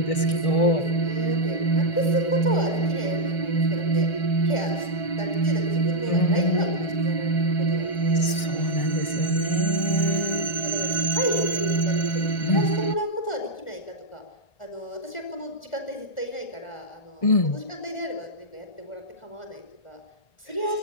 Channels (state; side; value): late; right; 1.6 ms